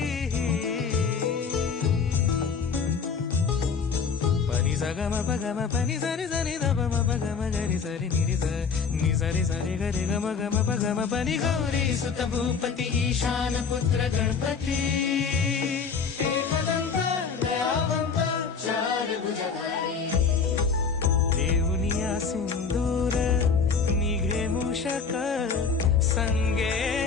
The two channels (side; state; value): right; quieter; 5.7 dB